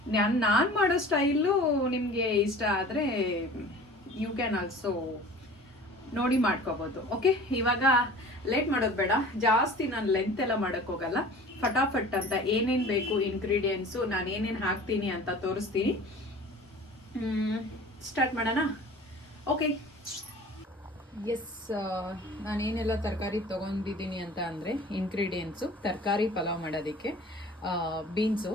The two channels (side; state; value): both; normal; correlation 0.43